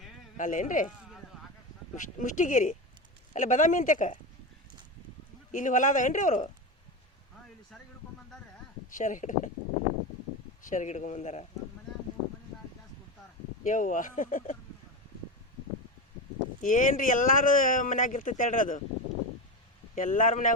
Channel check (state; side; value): normal; both; correlation 0.19